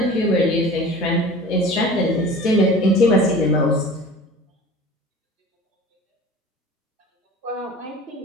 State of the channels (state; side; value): normal; both; correlation 0.41